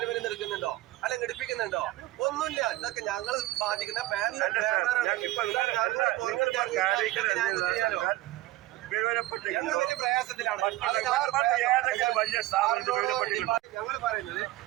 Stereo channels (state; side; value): quieter; left; 17.3 dB